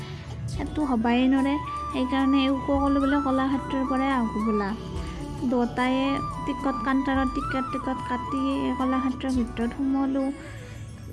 সেইটো হ'বাই নৰে। সেইকাৰণে সকলো বোলে কলাক্ষেত্ৰৰ পৰাই আহোঁ বোলা। দুটায়ে টিকট কাউণ্টাৰত টিকট কাটি কলাক্ষেত্ৰৰ ভিতৰত সোমালোঁ।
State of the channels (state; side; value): identical; both; correlation 1.00